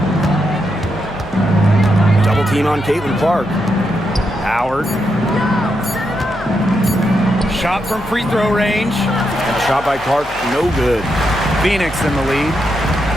Double team on Caitlin Clark. Howard. Shot from free throw range. And a shot by Clark, no good. Phoenix in the lead.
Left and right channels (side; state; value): left; noise; hum, 18 dB below the sound